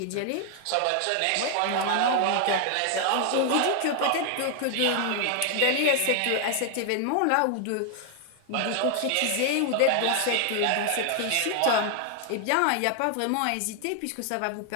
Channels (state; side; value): different; both; correlation 0.00